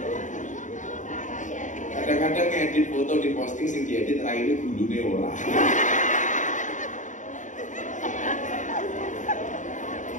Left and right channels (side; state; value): right; late; 0.36 ms